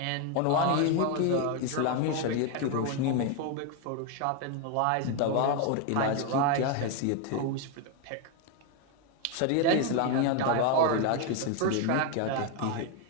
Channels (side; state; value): both; different; correlation 0.01